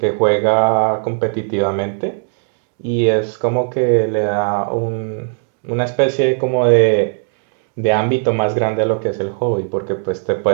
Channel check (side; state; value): left; silent; digital silence